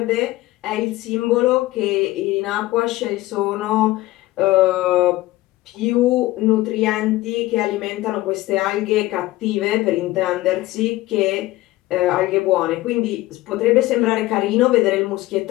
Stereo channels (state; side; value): quieter; right; 17.7 dB